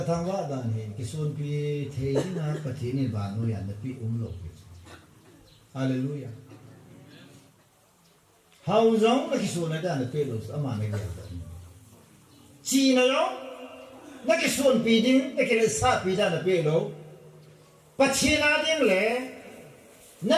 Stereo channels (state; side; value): identical; both; correlation 1.00